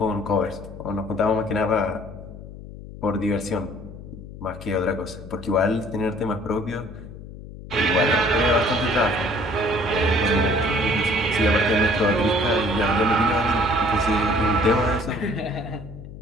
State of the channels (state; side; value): noise; left; hum, 14 dB below the sound